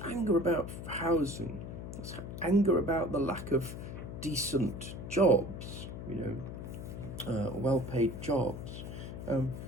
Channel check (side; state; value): left; noise; hum, 8 dB below the sound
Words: anger about housing, there's anger about the lack of decent jobs, well-paid jobs.